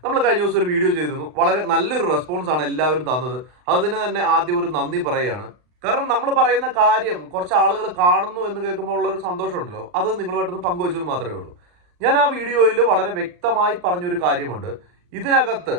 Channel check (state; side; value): late; left; 39 ms